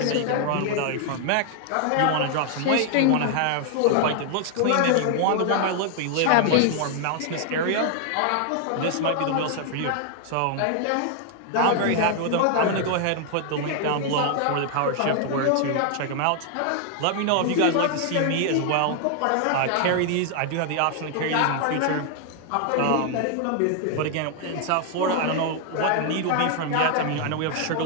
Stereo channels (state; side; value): different; both; correlation 0.00